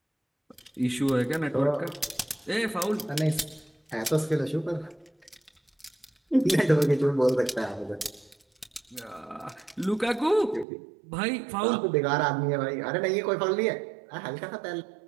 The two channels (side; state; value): left; drops out; at 10.7 s